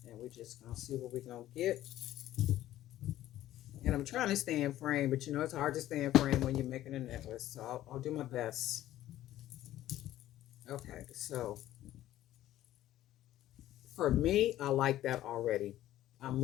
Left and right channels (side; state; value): right; quieter; 13.8 dB